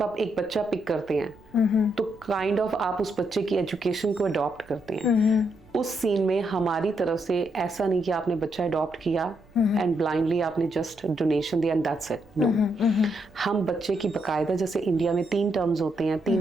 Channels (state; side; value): noise; right; rumble, 28 dB below the sound